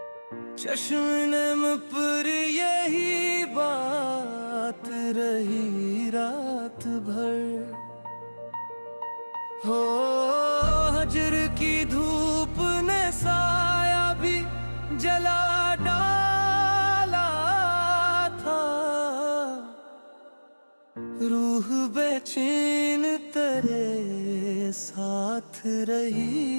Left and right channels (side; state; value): both; inverted; correlation -1.00